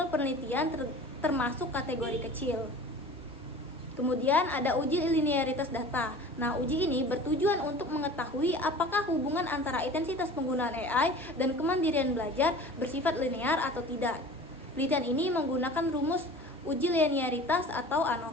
penelitian termasuk kategori kecil. Kemudian ada uji linearitas data. Nah, uji ini bertujuan untuk mengetahui apakah hubungan antara intensitas penggunaan AI dan kemandirian belajar bersifat linear atau tidak. Penelitian ini menggunakan rumus uji linearitas atau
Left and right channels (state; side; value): normal; both; correlation 0.41